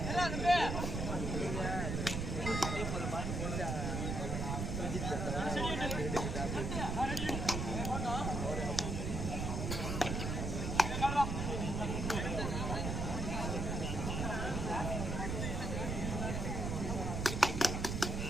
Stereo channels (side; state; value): right; noise; rumble, 2 dB below the sound